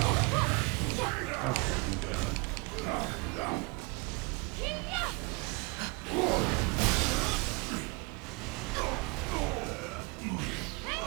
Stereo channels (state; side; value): quieter; left; 28.8 dB